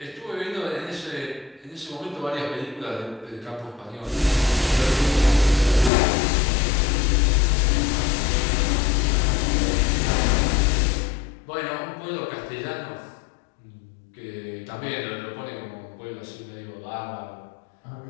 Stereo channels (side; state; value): right; drops out; at 5.9 s